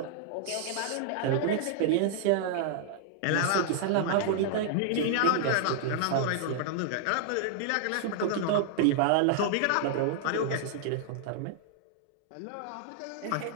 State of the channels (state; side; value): different; both; correlation -0.01